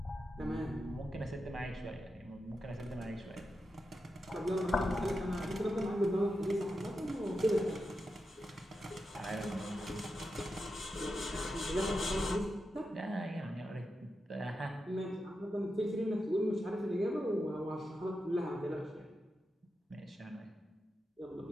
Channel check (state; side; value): normal; both; correlation 0.88